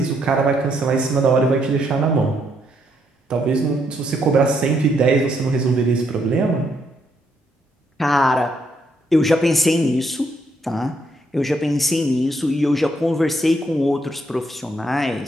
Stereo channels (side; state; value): both; normal; correlation 0.74